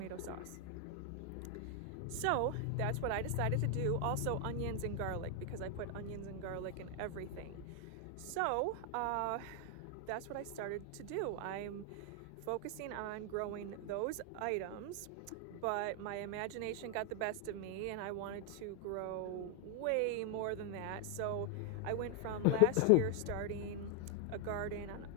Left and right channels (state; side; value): different; both; correlation 0.00